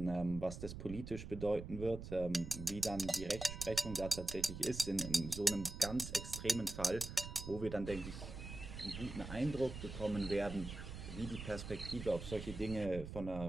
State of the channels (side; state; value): right; noise; rumble, 9 dB below the sound